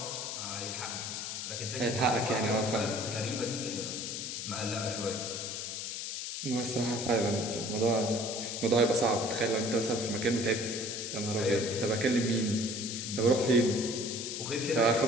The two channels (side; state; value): left; noise; hiss, 5 dB below the sound